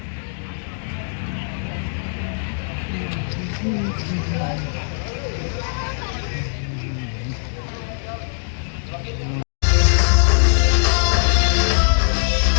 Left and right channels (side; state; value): right; silent; digital silence